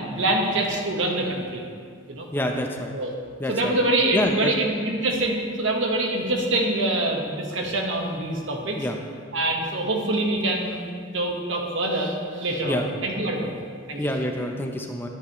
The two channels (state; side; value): normal; both; correlation 0.16